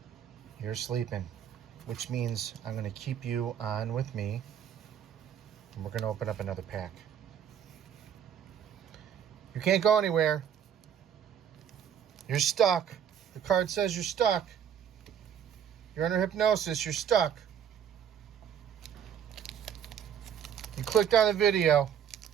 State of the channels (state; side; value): quieter; left; 8.8 dB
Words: you're sleeping, which means I'm going to keep you on with me, and we're going to open up another pack. You can't go anywhere. You're stuck. The card says you're stuck. You're under hypnosis. You're stuck. You clicked on the video.